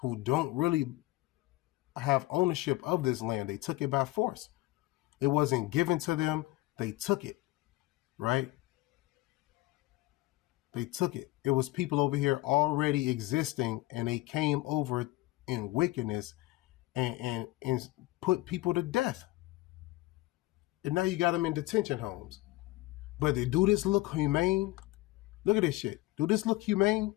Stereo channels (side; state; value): right; quieter; 18.8 dB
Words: who don't really have ownership of this land. They took it by force. It wasn't given to them. They took it, right? They took it. It was people over here already existing, and they came over in wickedness and put people to death. And now you got them in detention homes. But they do this look humane? Look at this shit. Do this look humane?